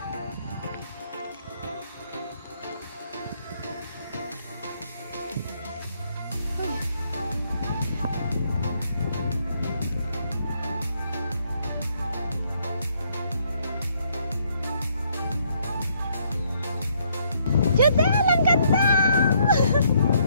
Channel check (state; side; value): inverted; both; correlation -0.69